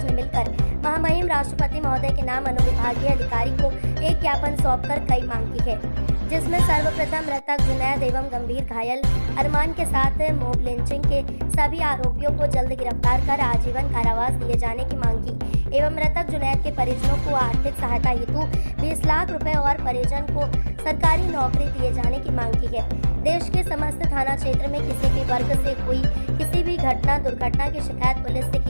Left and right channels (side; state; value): both; inverted; correlation -1.00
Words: ने मिलकर महामहिम राष्ट्रपति महोदय के नाम अनुविभागीय अधिकारी को एक ज्ञापन सौंपकर कई मांग की है, जिसमें सर्वप्रथम मृतक जुनैद एवं गंभीर घायल अरमान के साथ मॉब लिंचिंग के सभी आरोपियों को जल्द गिरफ्तार कर आजीवन कारावास दिए जाने की मांग की एवं मृतक जुनैद के परिजनों को आर्थिक सहायता हेतु 20 लाख रुपए और परिजन को सरकारी नौकरी दिए जाने की मांग की है। देश के समस्त थाना क्षेत्र में किसी भी वर्ग से हुई किसी भी दुर्घटना की शिकायत पुलिस से